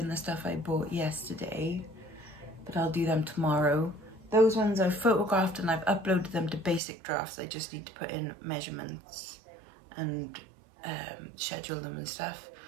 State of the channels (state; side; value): drops out; left; at 6.8 s